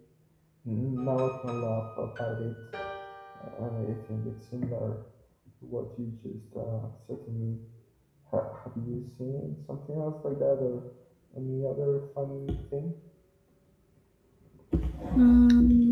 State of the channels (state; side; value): identical; both; correlation 1.00